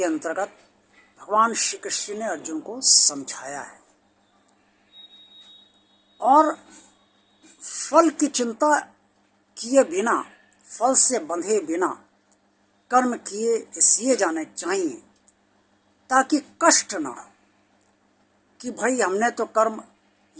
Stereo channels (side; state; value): both; identical; correlation 1.00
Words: अंतर्गत भगवान श्री कृष्ण ने अर्जुन को समझाया है। और फल की चिंता किए बिना, फल से बंधे बिना कर्म किए इसलिए जाने चाहिए ताकि कष्ट ना हो, कि भाई हमने तो कर्म